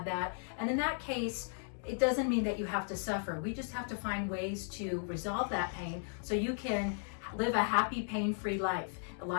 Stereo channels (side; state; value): right; silent; 54 dB below the other